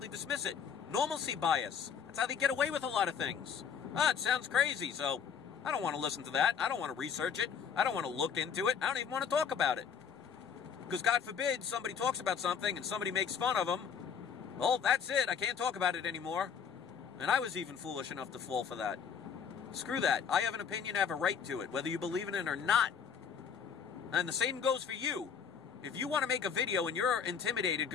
dismiss it. Normalcy bias. That's how they get away with a lot of things. It sounds crazy, so I don't want to listen to that. I don't want to research it. I don't want to look into it. I don't even want to talk about it. Because, God forbid, somebody talks about something and somebody makes fun of them. Well, that's it. I can't talk about it anymore. And I was even foolish enough to fall for that. Screw that. I have an opinion. I have a right to it, whether you believe in it or not. And the same goes for you. If you want to make a video and you're intimidated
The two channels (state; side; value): quieter; right; 7.0 dB